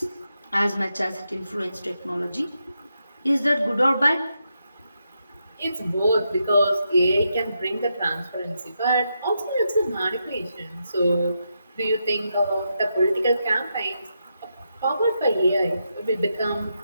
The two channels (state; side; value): inverted; both; correlation -0.83